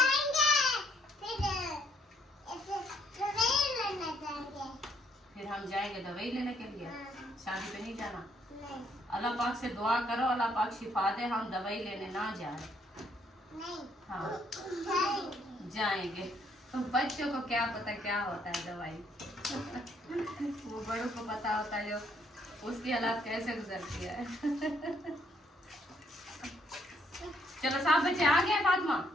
फिर हम जाएंगे दवाई लेने के लिए, शादी पे नहीं जाना। अल्लाह पाक से दुआ करो अल्लाह पाक शिफा दे, हम दवाई लेने ना जाए। हाँ जाएंगे, तो बच्चों को क्या पता क्या होता है दवाई। वो बड़ों को पता होता है जो उसकी हालात कैसे गुजरती है। चलो सब बच्चे आ गए, फातिमा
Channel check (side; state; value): both; normal; correlation 0.68